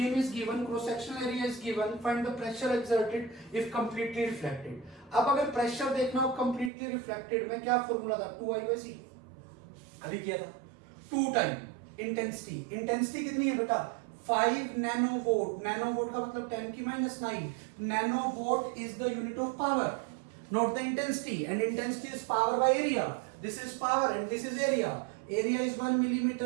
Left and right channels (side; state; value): left; drops out; at 6.7 s